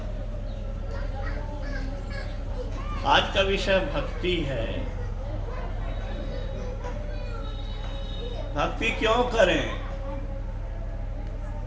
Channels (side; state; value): both; identical; correlation 1.00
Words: आज का विषय भक्ति है। भक्ति क्यों करें?